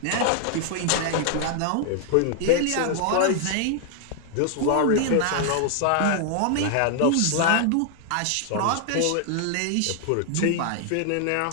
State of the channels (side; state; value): both; different; correlation 0.00